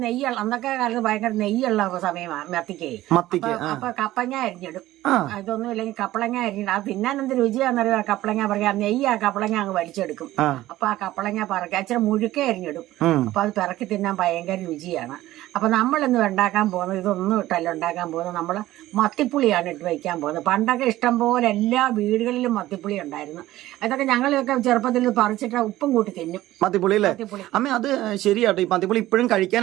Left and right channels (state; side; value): quieter; left; 15.6 dB